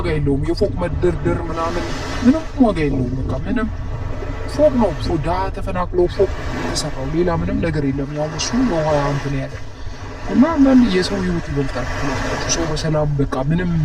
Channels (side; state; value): both; identical; correlation 1.00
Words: የለውም። የፎቅ መደርደር ምናምን ምንም ዋጋ የለውም። በቃ ምንም ፎቅ ነው። ድሀ ተፈናቅሎ ፎቅ የተሰራው ሌላ ምንም ነገር የለም። ያው እሱ ውሃ እንትን ያለ እና አንዳንድ የሰው ህይወት ይበልጣል። ሰው በሰላም በቃ ምንም